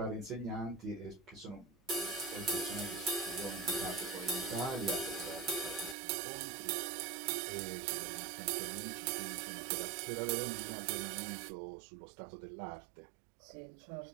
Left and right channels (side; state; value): left; drops out; at 6.0 s